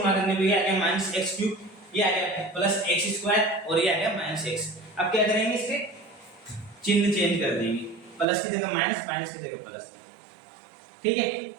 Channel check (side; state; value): left; drops out; at 8.2 s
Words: करने पे आ गया माइनस एक्स क्यूब, ये आ गया प्लस एक्स स्क्वायर, और ये आ गया माइनस एक्स। अब क्या करेंगे, इसके चिन्ह चेंज कर देंगे, प्लस की जगह माइनस, माइनस की जगह प्लस। ठीक है,